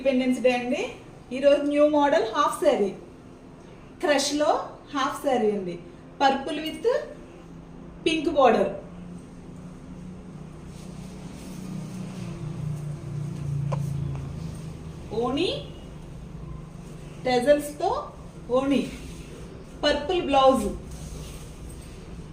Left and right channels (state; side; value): identical; both; correlation 1.00